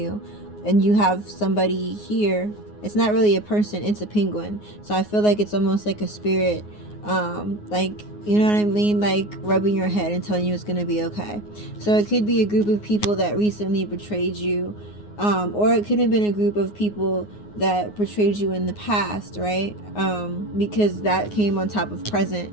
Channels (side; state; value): right; late; 9.6 ms